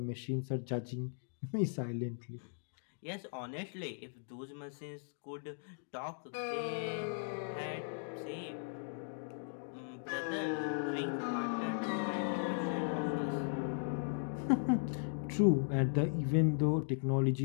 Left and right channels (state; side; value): silent; right; digital silence